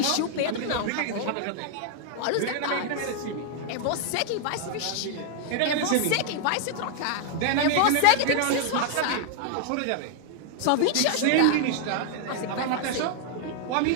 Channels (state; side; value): different; both; correlation 0.00